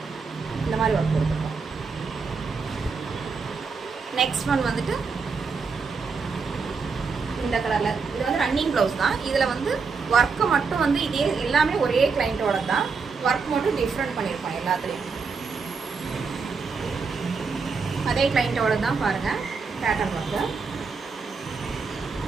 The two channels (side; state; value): left; quieter; 5.0 dB